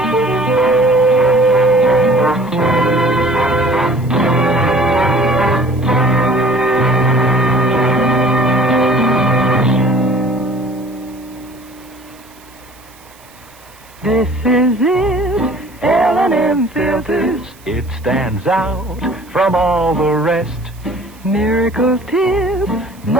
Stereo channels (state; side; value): noise; right; hiss, 26 dB below the sound